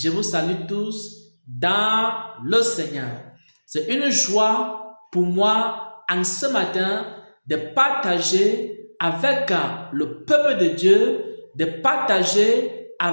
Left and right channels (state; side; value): inverted; both; correlation -1.00